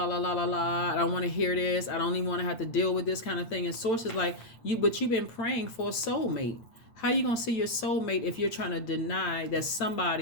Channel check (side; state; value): right; late; 8.8 ms